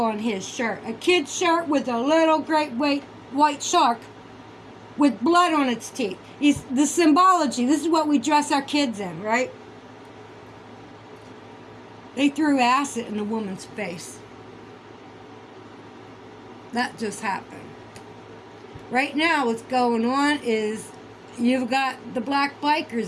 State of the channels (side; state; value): both; identical; correlation 1.00